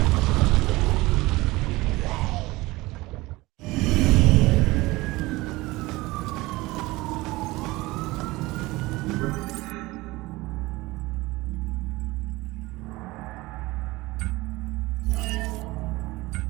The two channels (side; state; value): left; quieter; 20.7 dB